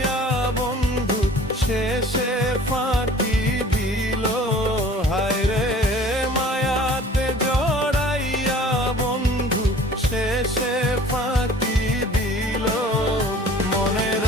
বন্ধু শেষে ফাঁকি দিল হায় রে, মায়াতে জড়াইয়া বন্ধু শেষে ফাঁকি দিল। মনে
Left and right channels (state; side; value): normal; both; correlation 0.48